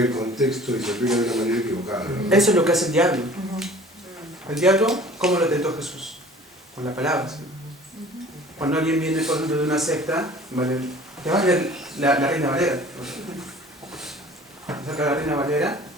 contexto y se aplica de una manera equivocada, ¿no? Eso es lo que hace el diablo. El diablo, ¿cómo lo tentó Jesús? Con la palabra. ¿Sí? Cuando alguien viene, por ejemplo, de una secta, ¿vale? Te va a leer la Reina Valera. Saca la Reina Valera,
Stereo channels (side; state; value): both; normal; correlation 0.47